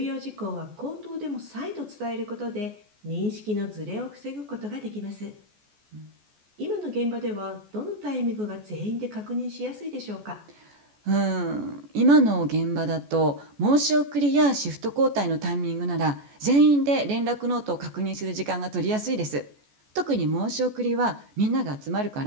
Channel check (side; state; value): left; late; 14 ms